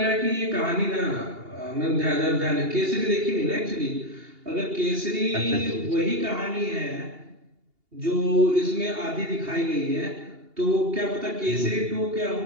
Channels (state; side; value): late; left; 2.8 ms